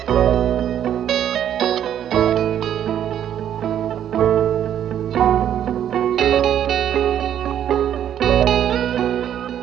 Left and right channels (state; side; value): quieter; left; 10.1 dB